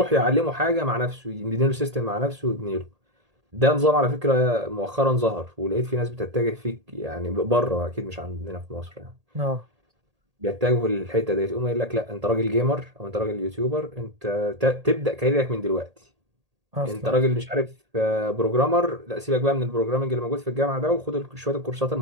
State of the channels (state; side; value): late; left; 1.8 ms